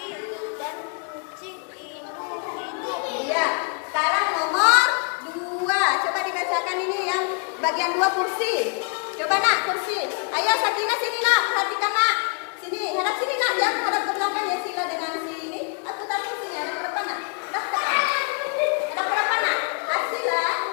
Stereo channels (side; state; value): right; quieter; 37.9 dB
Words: dan kucing itu hidup. Iya. Sekarang nomor 2. Coba dibacakan ini yang bagian 2 kursi. Coba nak kursi. Ayo Sabrina sini nak. Perhatikan nak. Sini. Hadap sini nak. Jangan hadap ke belakang ya Sila dengan si ini. Aku tak kursi ya. Hadap ke depan nak. Hadap ke depan. Hadap ke depan nak. Sila.